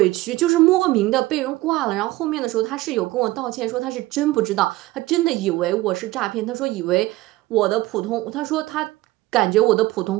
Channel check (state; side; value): quieter; left; 18.4 dB